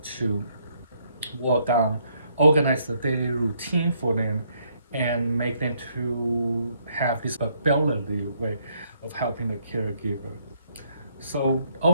to work on, organize the daily routine for them and make them to have this ability way of helping the caregiver. So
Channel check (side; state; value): both; inverted; correlation -0.70